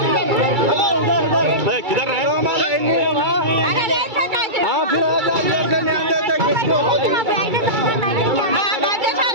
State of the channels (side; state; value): left; late; 2.3 ms